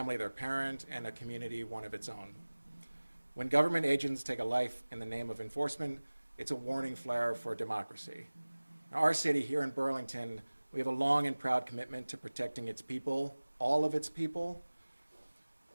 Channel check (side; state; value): both; inverted; correlation -1.00